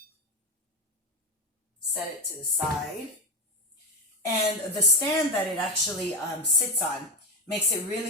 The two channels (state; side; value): normal; both; correlation 0.12